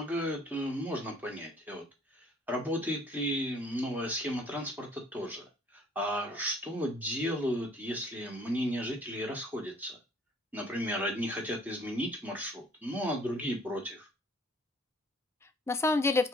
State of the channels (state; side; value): normal; both; correlation 0.57